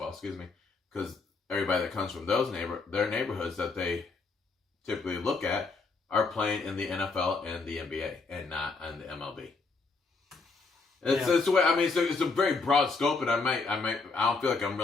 excuse me, because everybody that comes from their neighborhoods that they typically look at are playing in the NFL and the NBA and not in the MLB. It's the way. I mean, it's a very broad scope, and I don't feel like I'm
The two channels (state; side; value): quieter; right; 4.1 dB